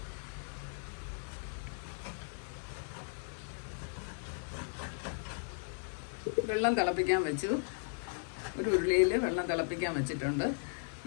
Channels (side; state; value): right; silent; 53 dB below the other